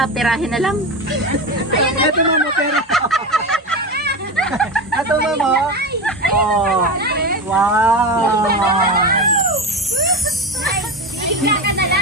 pirahin na lang. Ito mamo, pero... Ito mamo. Oh. Wow. Hihiga ka na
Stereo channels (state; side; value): normal; both; correlation 0.22